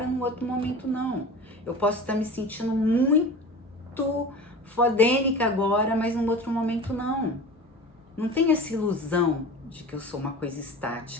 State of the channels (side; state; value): both; normal; correlation 0.35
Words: no outro momento não. Eu posso estar me sentindo muito fodênica agora, mas no outro momento não. Não tem essa ilusão de que eu sou uma coisa